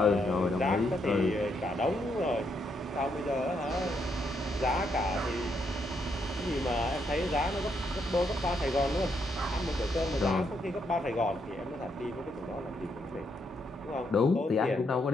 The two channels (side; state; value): both; normal; correlation 0.76